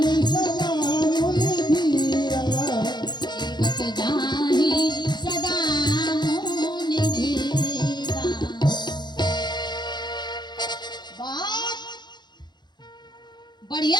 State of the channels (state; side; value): late; right; 0.21 ms